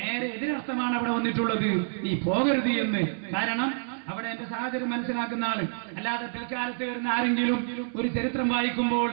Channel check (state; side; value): silent; left; 59 dB below the other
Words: എതിരർത്ഥമാണ് അവിടെ വന്നിട്ടുള്ളത്, നീ പോകരുത് എന്ന്. കാരണം അവിടെ എന്റെ സാഹചര്യം മനസ്സിലാക്കുന്ന ആള്, അല്ലാതെ പിൽക്കാലത്ത് വരുന്ന ആരെങ്കിലും ഒരു ചരിത്രം വായിക്കുമ്പോൾ